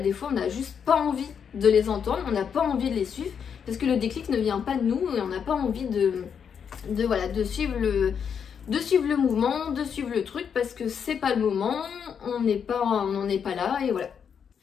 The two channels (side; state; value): right; quieter; 7.3 dB